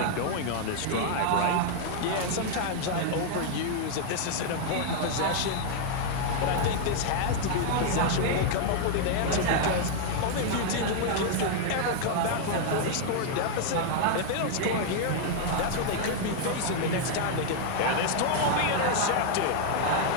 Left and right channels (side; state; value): both; different; correlation 0.00